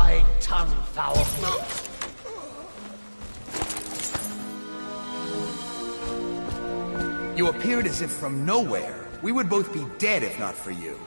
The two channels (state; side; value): inverted; both; correlation -1.00